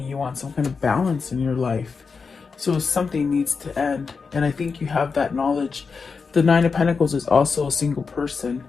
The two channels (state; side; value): quieter; right; 5.1 dB